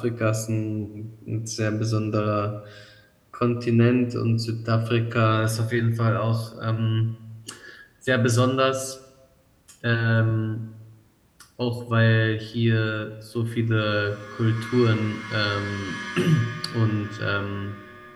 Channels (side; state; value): both; identical; correlation 1.00